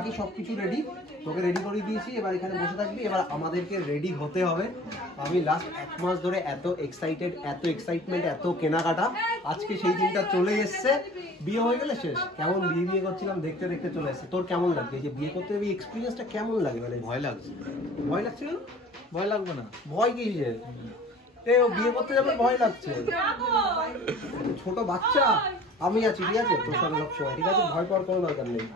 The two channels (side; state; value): both; normal; correlation 0.45